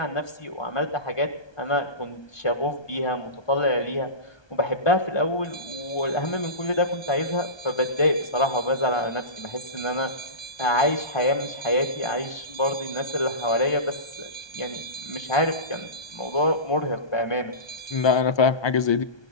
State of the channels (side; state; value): right; late; 1.2 ms